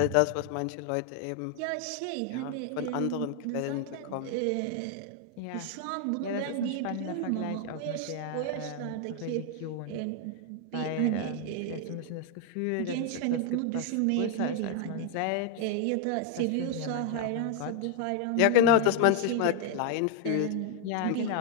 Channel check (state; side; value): different; both; correlation 0.00